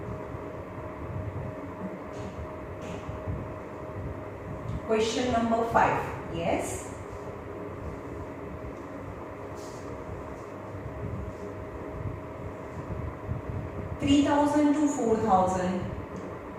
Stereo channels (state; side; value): identical; both; correlation 1.00